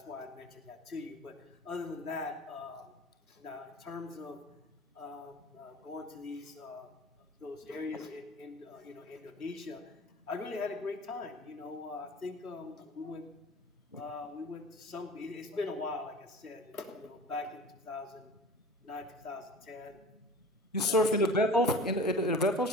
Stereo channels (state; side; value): normal; both; correlation 0.40